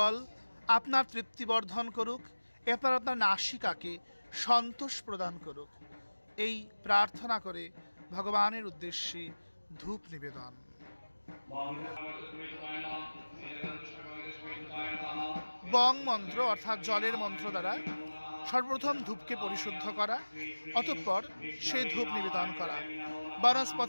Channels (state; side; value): inverted; both; correlation -1.00